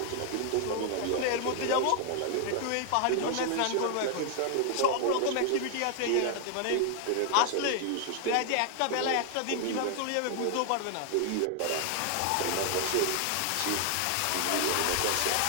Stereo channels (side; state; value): both; different; correlation 0.00